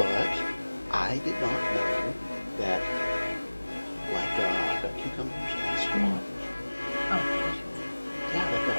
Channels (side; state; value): both; inverted; correlation -1.00